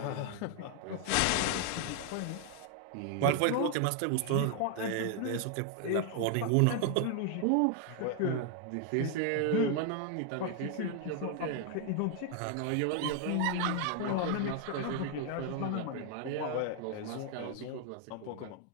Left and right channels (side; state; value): both; different; correlation 0.00